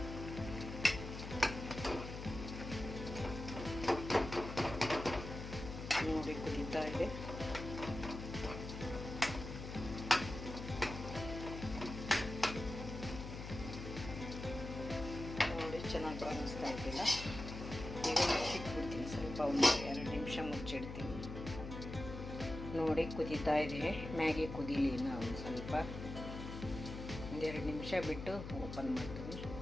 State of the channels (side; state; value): left; noise; hum, 8 dB below the sound